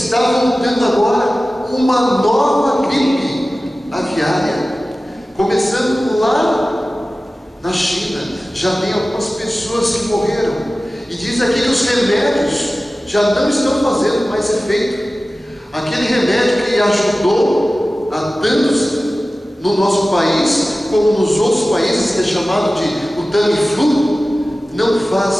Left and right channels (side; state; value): both; normal; correlation 0.96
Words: voltando agora uma nova gripe aviária, começando lá na China. Já tem algumas pessoas que morreram, e diz aqui que os remédios já não estão fazendo mais efeito. Aquele remédio que ajudou a tantos no nosso país, como nos outros países, que é chamado de o Tamiflu, não